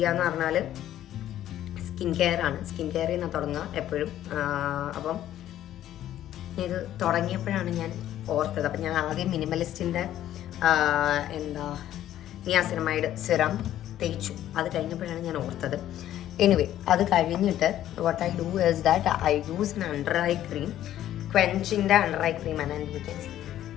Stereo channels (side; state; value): right; quieter; 12.3 dB